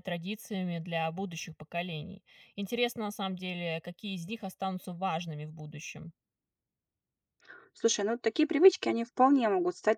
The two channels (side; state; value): both; identical; correlation 1.00